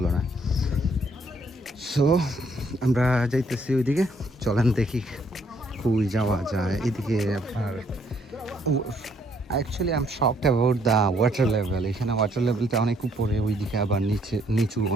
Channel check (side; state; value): both; normal; correlation 0.68